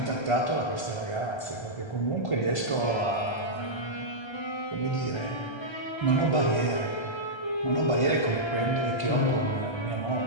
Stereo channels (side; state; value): right; late; 1.3 ms